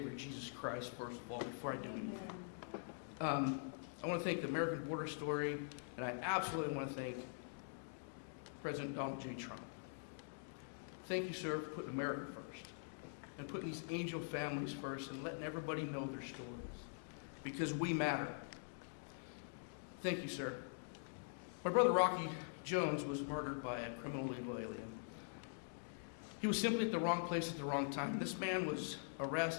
Jesus Christ, first of all, before I do anything. I want to thank the American Border Story, and I absolutely want to thank President Donald J. Trump. Thank you, sir, for putting America first, and putting these angel families first, and letting everybody know their stories, because we matter. Thank you, sir. My brother Rocky Jones was murdered by a criminal illegal alien. He was simply at the wrong place at the wrong time. This man was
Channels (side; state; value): right; silent; digital silence